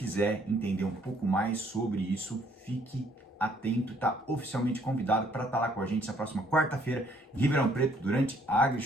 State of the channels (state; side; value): normal; both; correlation 0.64